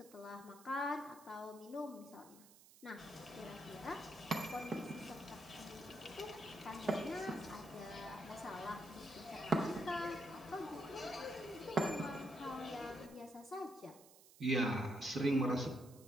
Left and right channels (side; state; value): right; noise; hiss, 21 dB below the sound